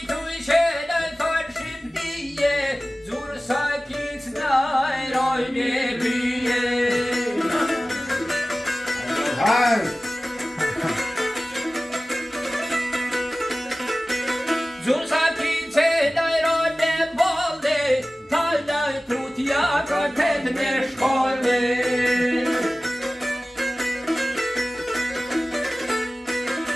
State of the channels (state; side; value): normal; both; correlation 0.97